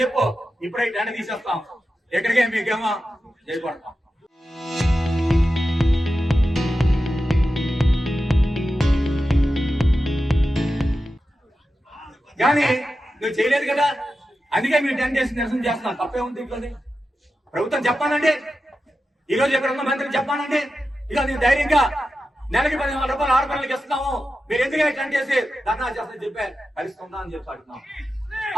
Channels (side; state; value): both; normal; correlation 0.91